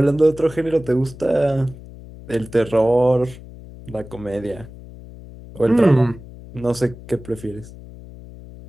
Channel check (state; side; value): noise; left; hum, 17 dB below the sound